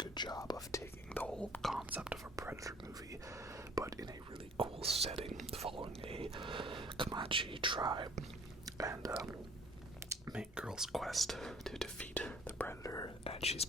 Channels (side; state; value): both; normal; correlation 0.53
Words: job of taking the whole concept of a Predator movie, but in a really cool setting, following a Comanche tribe and main girl's quest to defeat the Predator, and she's